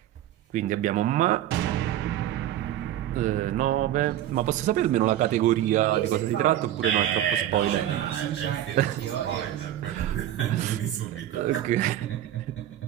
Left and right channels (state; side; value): quieter; left; 12.3 dB